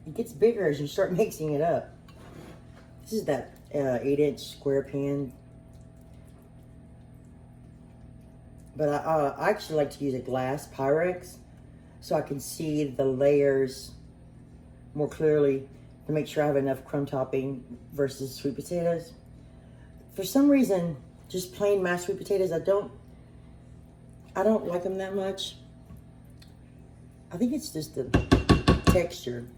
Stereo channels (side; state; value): both; identical; correlation 1.00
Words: gets bigger as you start mixing it up. This is that 8-inch square pan. But I actually like to use a glass Pyrex so I can see the layers more clearly to make sure I have enough crumb topping versus sweet potatoes. For some reason, just plain mashed sweet potatoes, I don't like them that much. I think it's just the texture.